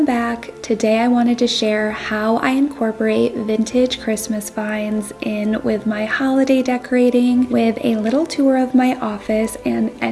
back. Today I wanted to share how I incorporate vintage Christmas finds in with my holiday decorating with a little tour of my office and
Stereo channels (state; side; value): identical; both; correlation 1.00